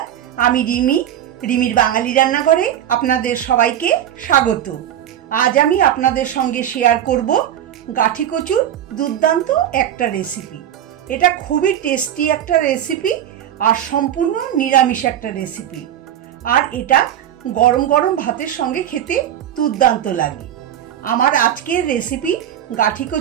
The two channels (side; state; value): left; quieter; 10.7 dB